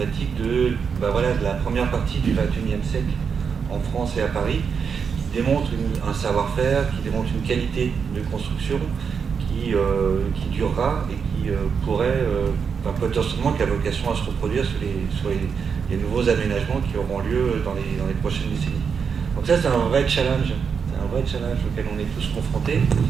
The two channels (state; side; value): quieter; left; 6.3 dB